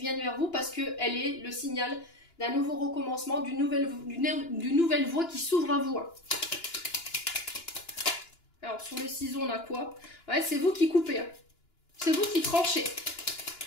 vers vous parce qu'elle est le signal d'un nouveau recommencement, d'une nouvelle voie qui s'ouvre à vous. Alors, sur le ciseau, on a quoi? Ouais, c'est vous qui coupez. Hein. C'est vous qui tranchez.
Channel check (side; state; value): right; late; 2.9 ms